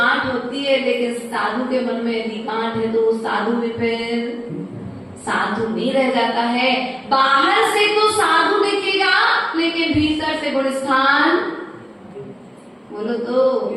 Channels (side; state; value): both; identical; correlation 1.00